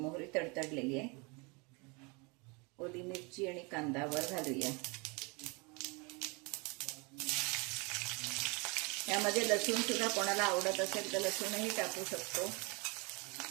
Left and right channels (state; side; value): quieter; left; 29.6 dB